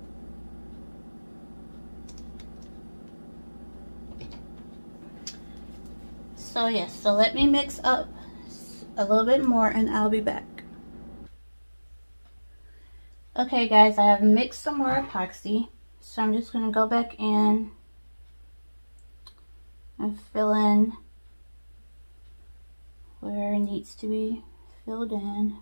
So yes, so let me mix up a little bit more and I'll be back. Okay guys, I have mixed some more epoxy. So I'm just going to go back in and fill in where it needs to be filled in.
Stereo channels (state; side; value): inverted; both; correlation -1.00